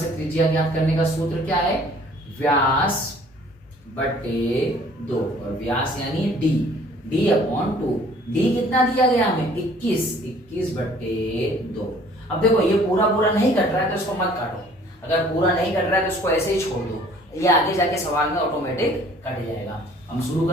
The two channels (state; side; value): normal; both; correlation 0.54